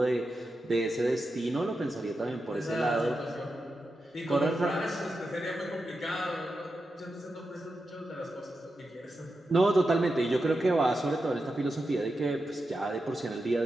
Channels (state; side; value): normal; both; correlation 0.89